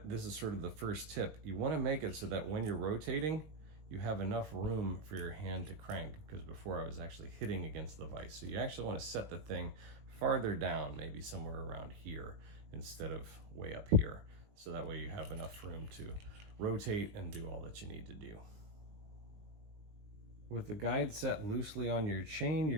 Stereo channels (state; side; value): late; left; 20 ms